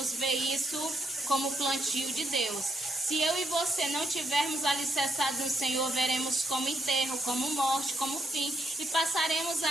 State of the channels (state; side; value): normal; both; correlation 0.77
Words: ver isso como plantio de Deus. Se eu e você não tivermos alicerçados no Senhor, veremos como enterro, como morte, como fim, e passaremos